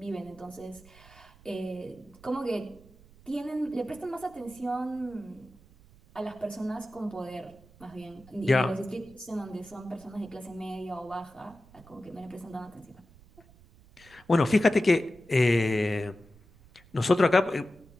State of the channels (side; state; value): right; noise; rumble, 24 dB below the sound